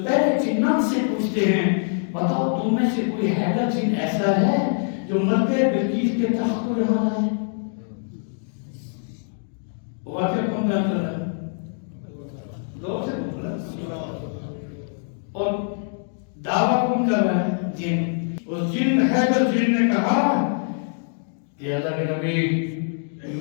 پہلے جنات سے پوچھتے ہیں بتاؤ تم میں سے کوئی حیدر جن ایسا ہے جو ملکہ بلقیس کے تخت کو یہاں لائے؟ واقعہ کون بیان کر رہا ہے؟ دو سے بول رہا ہے، اور دعویٰ کون کر رہا ہے؟ جن۔ اس جن حیدر جن نے کہا کہ اللہ کے نبی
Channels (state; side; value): silent; right; digital silence